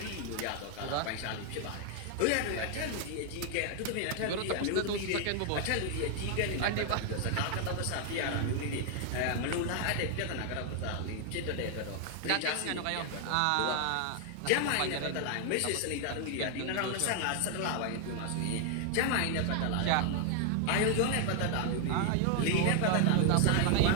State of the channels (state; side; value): different; both; correlation 0.00